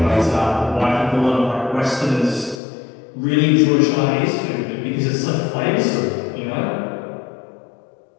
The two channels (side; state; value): right; drops out; at 2.6 s